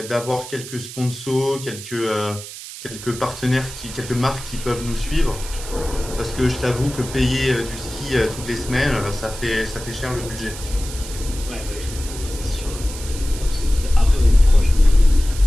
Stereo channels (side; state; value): right; noise; hiss, 12 dB below the sound